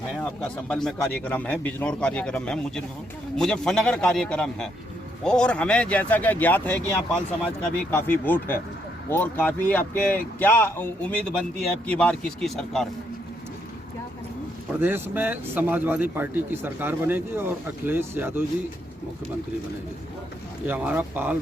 आपका संभल में कार्यक्रम है, बिजनौर कार्यक्रम है, मुजफ्फरनगर कार्यक्रम है। और हमें जैसा कि ज्ञात है कि यहाँ पाल समाज का भी काफ़ी वोट है और काफ़ी आपके क्या उम्मीद बनती है अब की बार किसकी सरकार? प्रदेश में समाजवादी पार्टी की सरकार बनेगी और अखिलेश यादव जी मुख्यमंत्री बनेंगे। ये हमारा पाल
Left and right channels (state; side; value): normal; both; correlation 0.75